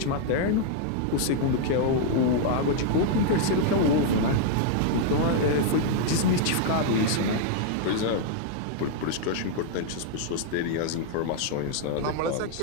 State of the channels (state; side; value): different; both; correlation -0.01